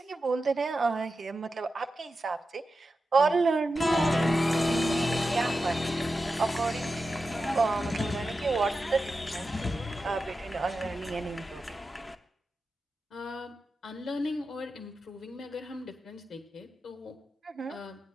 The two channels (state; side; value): normal; both; correlation 0.91